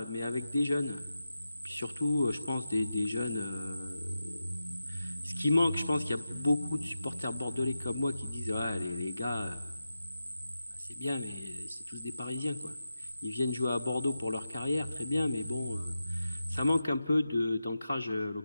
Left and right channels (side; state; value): both; inverted; correlation -0.92